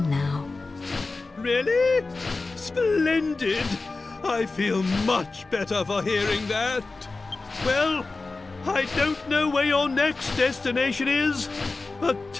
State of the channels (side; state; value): right; quieter; 3.6 dB